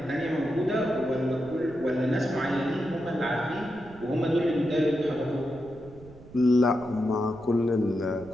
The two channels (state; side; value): noise; right; rumble, 20 dB below the sound